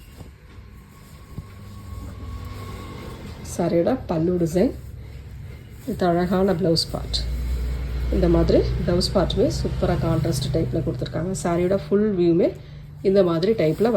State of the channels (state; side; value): identical; both; correlation 1.00